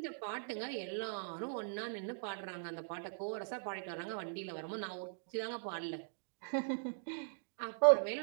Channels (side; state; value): left; silent; digital silence